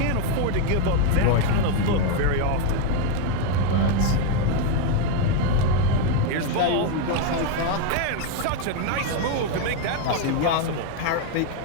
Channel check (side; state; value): both; different; correlation 0.01